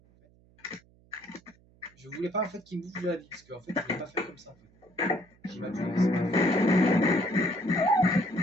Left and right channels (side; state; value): right; noise; hum, 29 dB below the sound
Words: Je voulais pas en fait qu'il me bouffe de la vie parce qu'en fait, je voulais pas faire comme ça en fait. J'ai ma tué, c'est pas